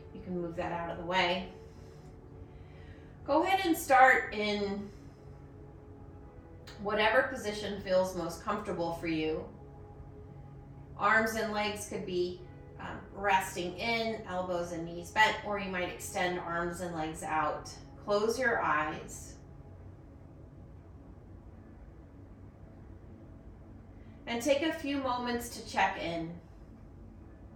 you can move that out of the way. Go ahead and start in whatever position feels most comfortable for you. Arms and legs could be resting in, elbows and knees bent, or you might extend arms and legs out. Close your eyes. And take a few moments to check in.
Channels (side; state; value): both; identical; correlation 1.00